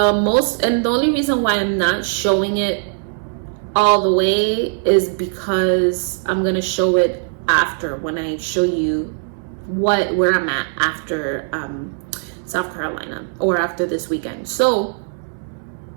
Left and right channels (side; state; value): left; silent; 66 dB below the other